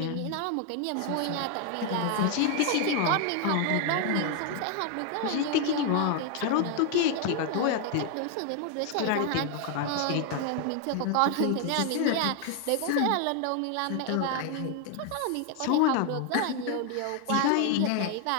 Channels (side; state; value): both; different; correlation 0.00